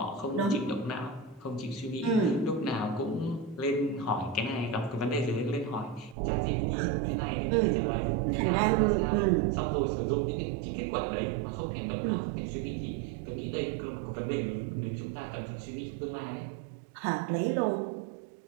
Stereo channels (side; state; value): left; drops out; at 6.2 s